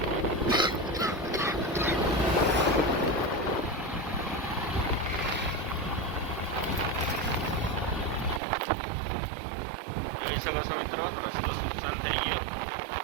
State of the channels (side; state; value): left; drops out; at 8.4 s